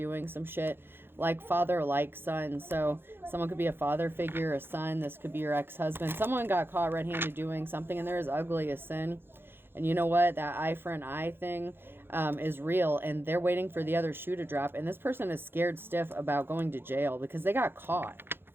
some shit like father, like son. So someone could be a father figure, a son. This could be your ex-husband. Someone got caught red-handed doing something and they're as ugly as sin. And you know what? That eye for an eye thing is real. And they're waiting for the other shoe to drop. And this person is scared stiff about going to jail because they got caught.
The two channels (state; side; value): late; left; 0.10 ms